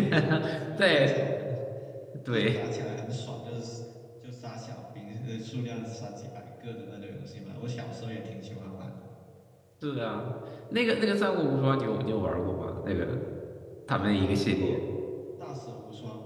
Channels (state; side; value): identical; both; correlation 1.00